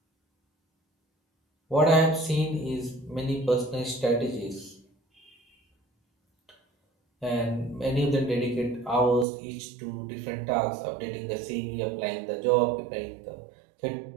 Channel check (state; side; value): drops out; left; at 9.2 s